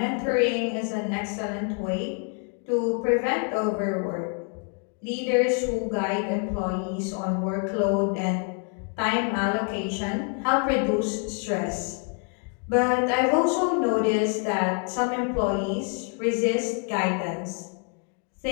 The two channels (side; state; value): right; quieter; 39.2 dB